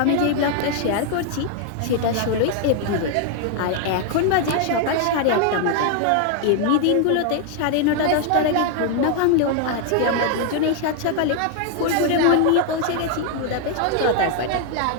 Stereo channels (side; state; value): both; different; correlation 0.00